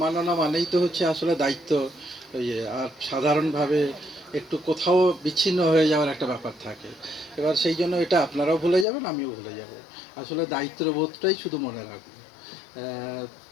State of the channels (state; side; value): drops out; right; at 8.8 s